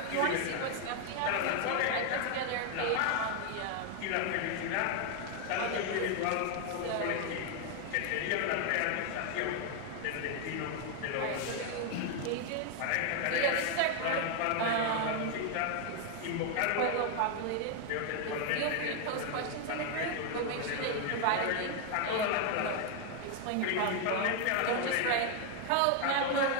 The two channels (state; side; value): different; both; correlation 0.01